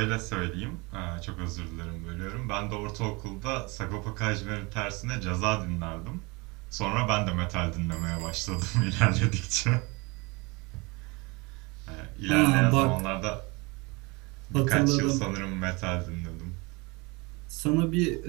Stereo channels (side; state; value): left; quieter; 26.7 dB